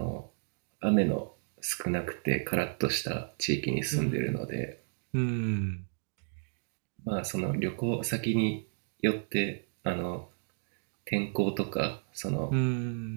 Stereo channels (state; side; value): silent; left; digital silence